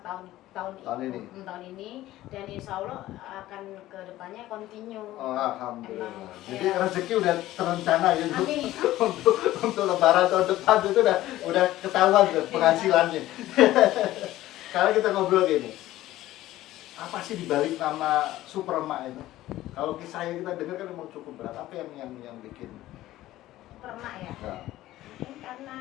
tahun ini, dan insya Allah akan ke depannya continue. Oh, alhamdulillah. Jadi Ya. rezeki udah terencana gitu. Amin. untuk lebaran tahun depan itu udah ketahuan tuh penghasilannya. Sekarang kita ngobrol gini. Apa sih dibalik nama Superma itu? Kalau kisahnya kita dengar kan memang cukup berat. Apa yang bikin? Superma ya. Nah. Mungkin karena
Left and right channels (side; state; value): right; quieter; 15.3 dB